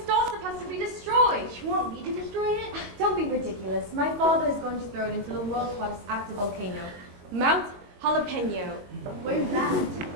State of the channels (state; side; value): late; left; 22 ms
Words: star stuff has to be destroyed. You want me to destroy it? Don't be ridiculous. My father is going to throw it into the world's hottest active volcano, Mount Jalapeno. Where's that?